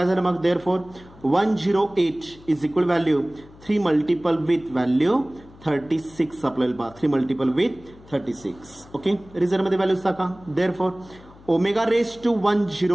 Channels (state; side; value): noise; left; hum, 23 dB below the sound